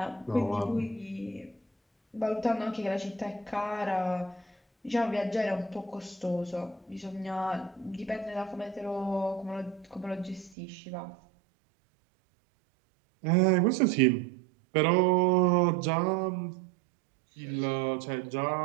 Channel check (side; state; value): left; drops out; at 10.6 s